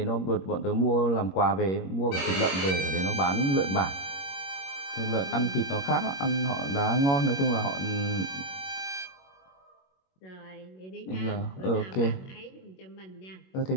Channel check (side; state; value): right; late; 21 ms